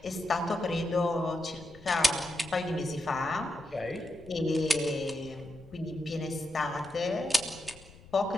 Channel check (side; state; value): left; noise; rumble, 21 dB below the sound